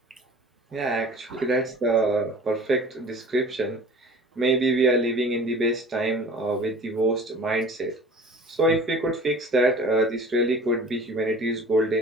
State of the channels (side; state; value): both; normal; correlation 0.44